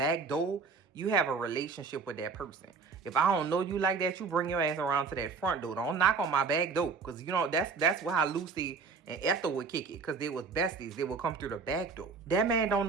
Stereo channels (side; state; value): left; quieter; 4.9 dB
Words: door, you have a relationship with that person. If I don't know you like that, you bring your ass around to that front door. Don't knock on my back door, because that's how Lucy and Ethel would kick it, because they was besties. They would come through the back door. That man don't